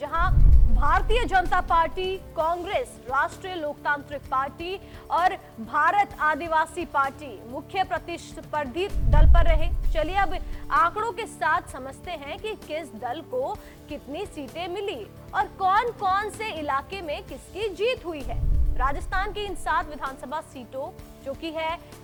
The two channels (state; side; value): identical; both; correlation 1.00